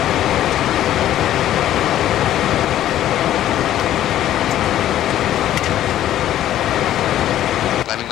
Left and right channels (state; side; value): quieter; right; 12.4 dB